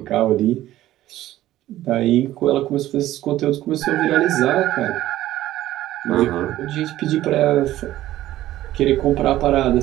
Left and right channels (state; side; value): quieter; left; 14.5 dB